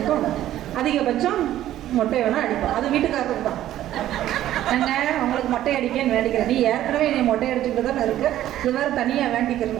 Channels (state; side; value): quieter; left; 13.0 dB